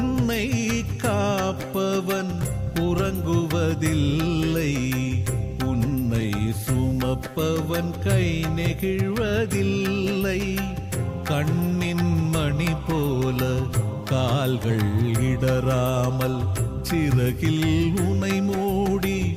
காப்பவன் உறங்குவதில்லை, உன்னை சுமப்பவன் கை நெகிழ்வதில்லை. கண்ணின் மணி போல கால்கள் இடராமல் சிறகில் உனை மூடி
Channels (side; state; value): both; identical; correlation 1.00